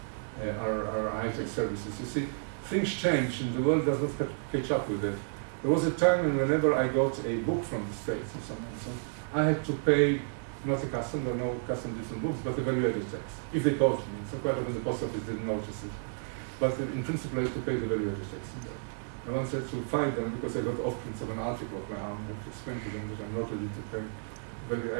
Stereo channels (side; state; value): left; silent; digital silence